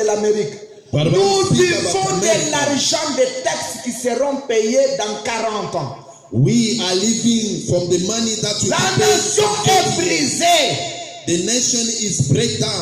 l'Amérique. Nous vivons de l'argent des taxes qui seront payés dans 40 ans. We are living from the money that we La pay. nation est brisée. The nation is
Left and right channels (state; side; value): identical; both; correlation 1.00